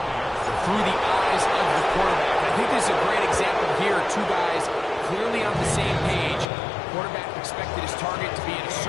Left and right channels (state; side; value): drops out; right; at 6.5 s